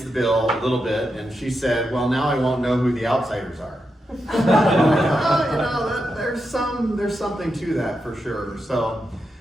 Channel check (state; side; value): normal; both; correlation 0.86